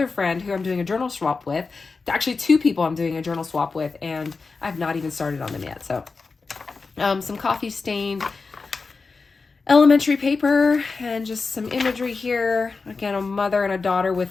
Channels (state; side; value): quieter; right; 4.3 dB